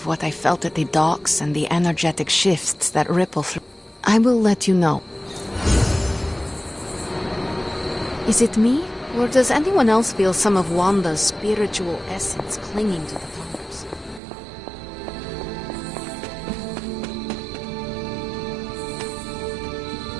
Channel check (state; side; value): drops out; left; at 14.2 s